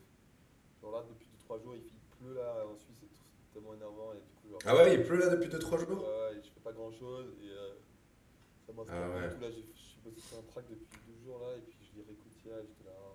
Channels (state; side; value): identical; both; correlation 1.00